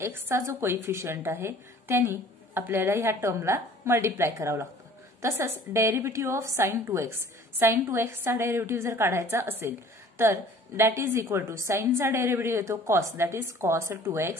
एक्सचा जो कोइफिशियंट आहे त्यांनी आपल्याला ह्या टर्मला मल्टिप्लाय करावं लागतं. तसंच derivative of sine 2x, sign 2x चा डेरिव्हेटिव्ह जर काढायचा असेल तर दॅट इज इक्वल टू साइनचा डेरिव्हेटिव्ह येतो cos, that is cos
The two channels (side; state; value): both; normal; correlation 0.50